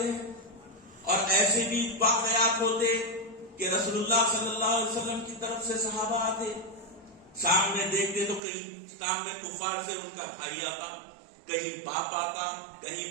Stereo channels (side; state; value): left; drops out; at 8.4 s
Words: اور ایسے بھی واقعات ہوتے کہ رسول اللہ صلی اللہ علیہ وسلم کی طرف سے صحابہ آتے، سامنے دیکھتے تو کہیں سامنے کفار سے ان کا بھائی آتا، کہیں باپ آتا،